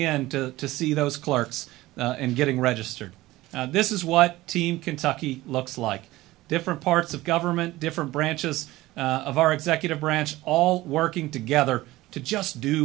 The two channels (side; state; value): left; quieter; 17.9 dB